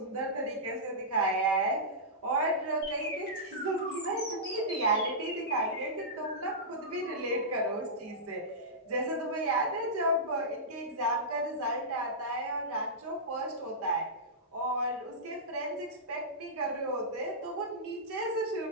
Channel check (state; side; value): normal; both; correlation -0.14